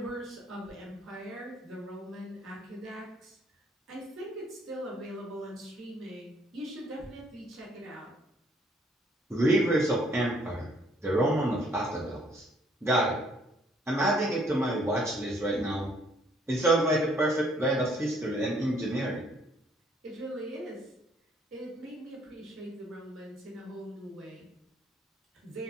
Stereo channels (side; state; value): both; normal; correlation 0.64